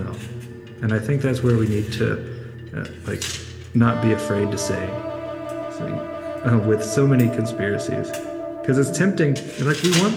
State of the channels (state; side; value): identical; both; correlation 1.00